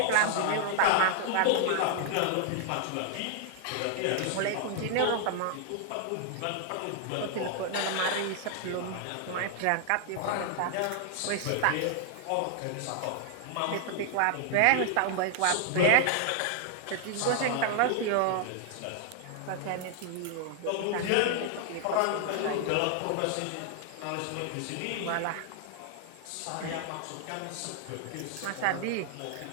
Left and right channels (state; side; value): different; both; correlation 0.00